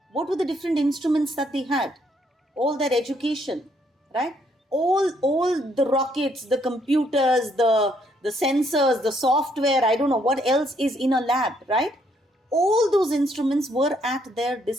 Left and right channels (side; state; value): both; normal; correlation 0.70